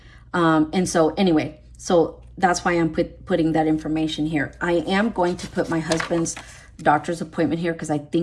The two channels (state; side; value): identical; both; correlation 1.00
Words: And so anyway, so that's why I'm putting that information here. I am going to put my husband's doctor's appointment here because I